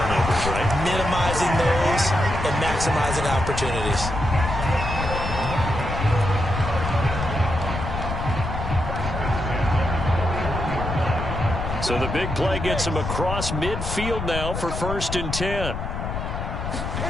right? Minimizing those and maximizing opportunities. So the big play gets him across midfield now for 1st and 10.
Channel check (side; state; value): left; noise; rumble, 4 dB below the sound